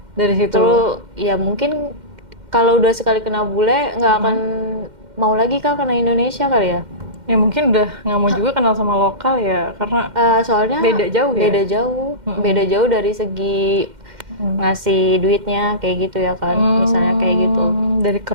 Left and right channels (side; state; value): left; late; 2.1 ms